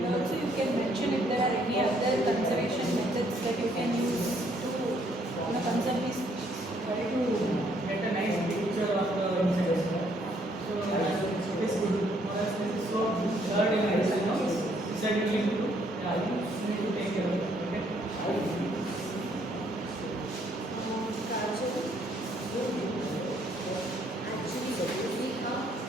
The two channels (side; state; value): both; normal; correlation 0.68